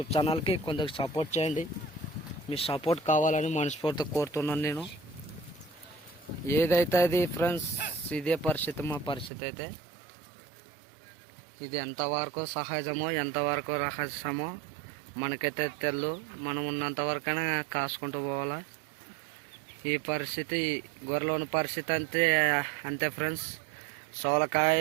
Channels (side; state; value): left; drops out; at 9.3 s